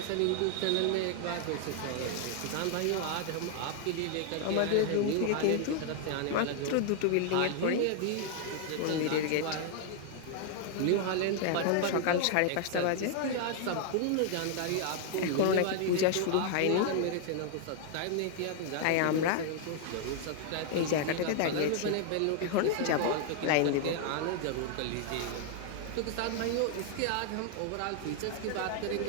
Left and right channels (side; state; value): both; different; correlation 0.00